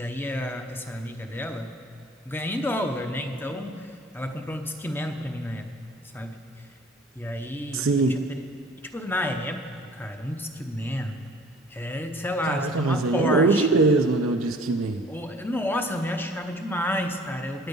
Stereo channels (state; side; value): normal; both; correlation 0.50